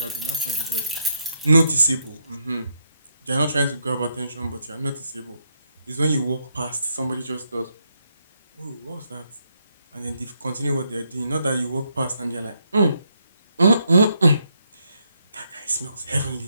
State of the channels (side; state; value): both; inverted; correlation -0.77